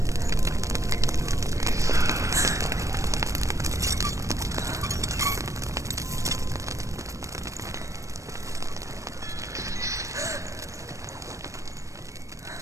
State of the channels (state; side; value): late; left; 0.15 ms